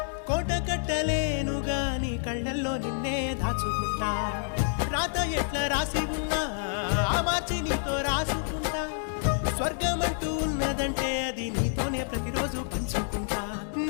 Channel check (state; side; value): silent; right; digital silence